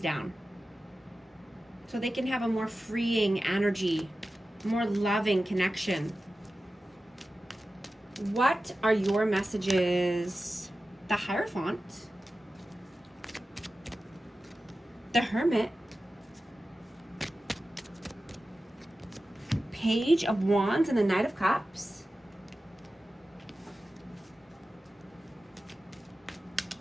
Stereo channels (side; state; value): both; normal; correlation 0.94